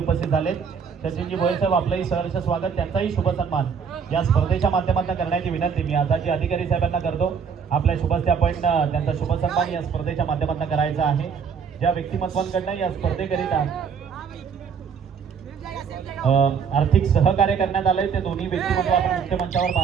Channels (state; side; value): quieter; left; 6.5 dB